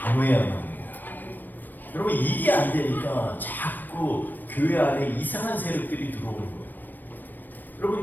합니다. 여러분 이게 안 되니까 자꾸 교회 안에 이상한 세력들이 들어오는 거예요.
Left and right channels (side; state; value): right; late; 0.090 ms